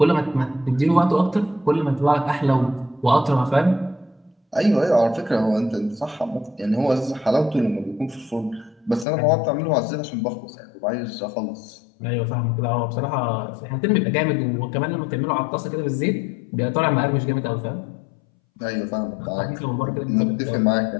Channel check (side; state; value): right; drops out; at 9.1 s